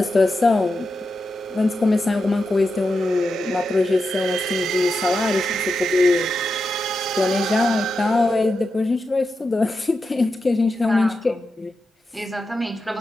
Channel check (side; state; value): both; normal; correlation 0.88